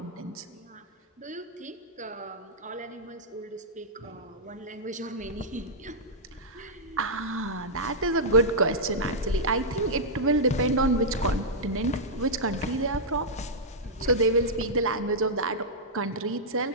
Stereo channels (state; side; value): normal; both; correlation -0.08